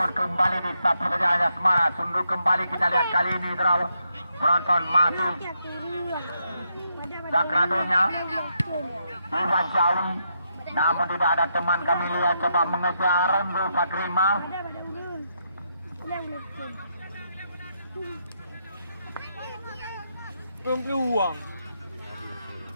kembali disapu saja Anja Semara. Sunduk kembali kita lihat kali ini draw penonton masih Sakradonya Iwan Jawi, namun tidak ada teman kami lihat coba mengejar Zul Fakrima. Belum peluang.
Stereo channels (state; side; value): inverted; both; correlation -0.80